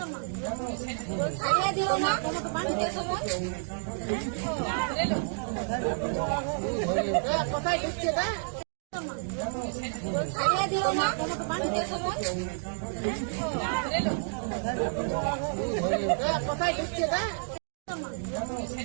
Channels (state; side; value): silent; left; 58 dB below the other